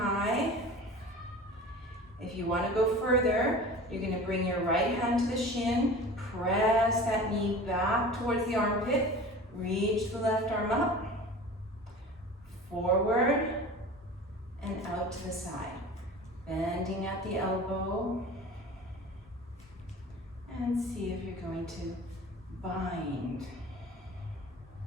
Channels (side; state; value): both; normal; correlation 0.38